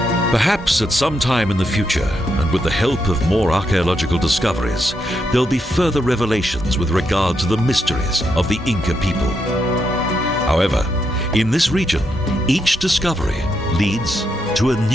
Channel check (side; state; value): both; normal; correlation 0.81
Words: Perhaps at some time in the future, and with the help of more archaeological discoveries, there'll be further revelations with regard to the mysteries of the Inca people. However, in this region, each discovery leads to a